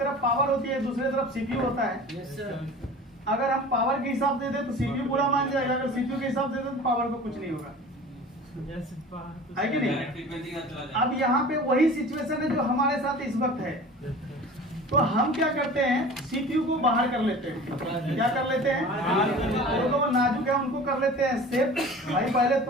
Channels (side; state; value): both; normal; correlation 0.40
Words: पावर होती है, दूसरी तरफ सीपीयू होता है। अगर हम पावर के हिसाब से दे तो सीपीयू पूरा मान जाएगा, अगर सीपीयू के हिसाब से दे तो पावर को कुछ नहीं होगा, है कि नहीं? अब यहाँ पे वही सिचुएशन है जो हमारे साथ इस वक्त है। तो हम क्या करते हैं, सीपीयू को बाहर कर लेते हैं। क्या कर लेते हैं? जो नाजुक है उनको कर लेते हैं सेफ। भाई पहले